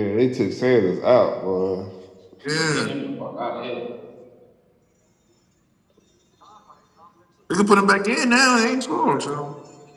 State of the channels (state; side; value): identical; both; correlation 1.00